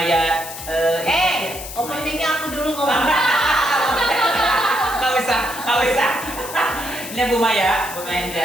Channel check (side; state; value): left; noise; hiss, 10 dB below the sound